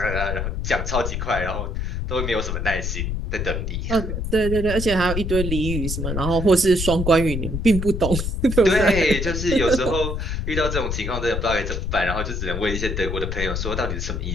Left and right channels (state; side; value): noise; left; rumble, 2 dB below the sound